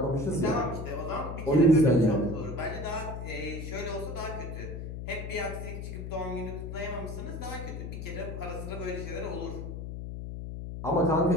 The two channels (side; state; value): left; noise; hum, 7 dB below the sound